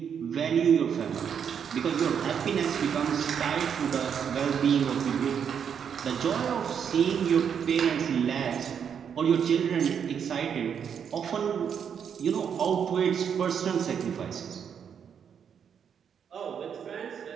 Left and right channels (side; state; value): left; quieter; 7.7 dB